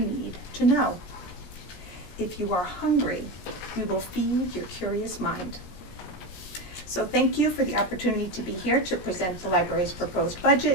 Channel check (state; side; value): late; right; 17 ms